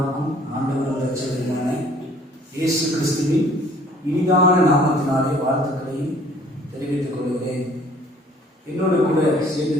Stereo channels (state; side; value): normal; both; correlation 0.56